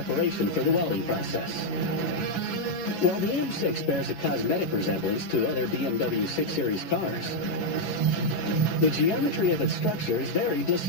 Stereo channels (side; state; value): right; late; 11 ms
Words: for the welding process. While the M6 bears a cosmetic resemblance to other BMW 6 Series cars, the geometry of its structure is very